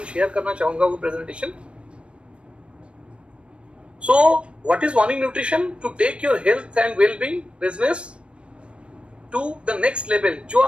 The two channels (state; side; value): late; left; 0.058 ms